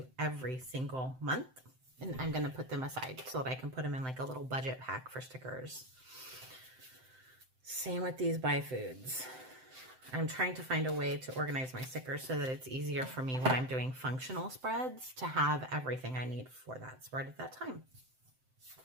every single month. And I'm going to put them aside so that I can put them in like a little budget pack for stickers. Same with these buy foods. I'm trying to find a way to organize my stickers so that it's easier for me when I'm doing functional spreads to have everything I need for that spread at that time.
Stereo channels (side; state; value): left; late; 7.8 ms